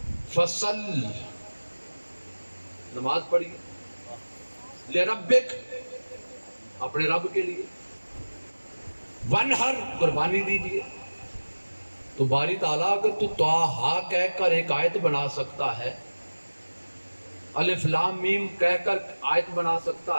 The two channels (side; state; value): both; inverted; correlation -1.00